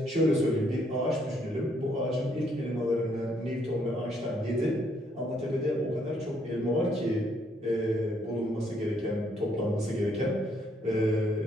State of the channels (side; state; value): both; normal; correlation 0.70